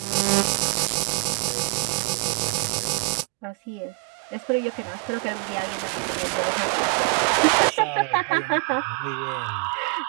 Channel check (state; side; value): quieter; left; 31.8 dB